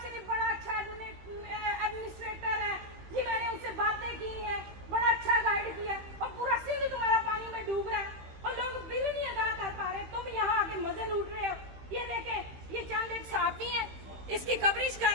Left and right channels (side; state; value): left; late; 16 ms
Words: शरीफ बड़ा अच्छा एडमिनिस्ट्रेटर है जी, मैंने उनसे बातें की हैं, बड़ा अच्छा गाइड किया, और पूरा सिंध तुम्हारा पानी में डूब रहा है और लोग बिल नहीं अदा कर पा रहे, तुम यहाँ आके मजे लूट रहे हो। ये देखें, ये चंद एक सहाफी हैं, इसकी कवरेज कर